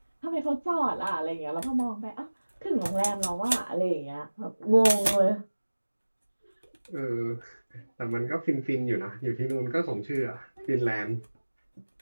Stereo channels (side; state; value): both; inverted; correlation -1.00